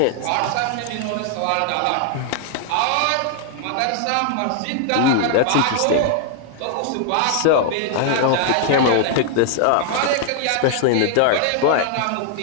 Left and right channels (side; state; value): both; different; correlation -0.01